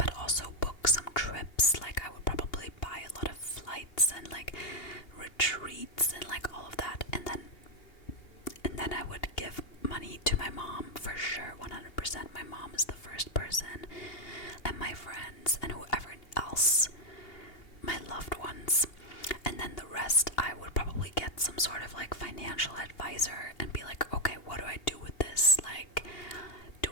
also book some trips. Like, I would probably buy a lot of flights and like retreats and like all of that, and then I would give money to my mom for sure, 100%. My mom is the first person, and my friends and whoever else, my loved ones. And then the rest, I would probably get some sort of like financial advisor and be like, okay, what do I do with this? Like, do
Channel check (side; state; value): right; late; 2.8 ms